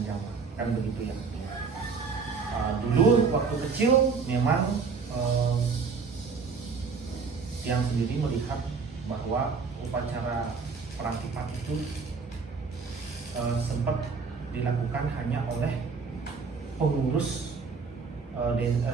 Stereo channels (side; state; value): left; quieter; 5.1 dB